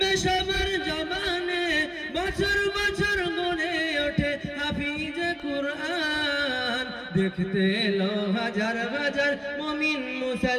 সবার জবানে, বছর বছর গড়ে ওঠে হাফিজে কুরআন। দেখতে এলো হাজার হাজার মুমিন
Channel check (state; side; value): identical; both; correlation 1.00